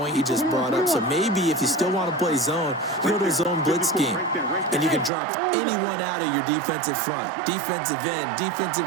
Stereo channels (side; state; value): left; drops out; at 5.1 s